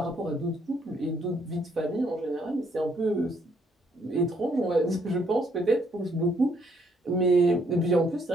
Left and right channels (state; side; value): normal; both; correlation 0.69